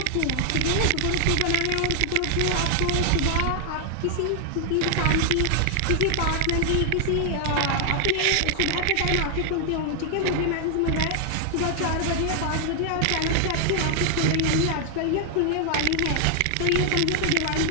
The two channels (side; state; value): both; different; correlation 0.00